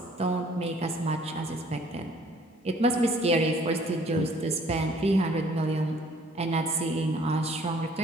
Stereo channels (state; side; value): normal; both; correlation 0.58